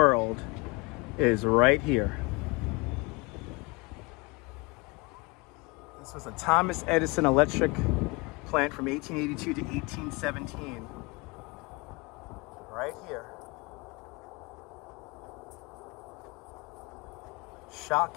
is right here. This was a Thomas Edison electric plant from 1882 to 1817. Right here.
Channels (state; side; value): quieter; right; 26.9 dB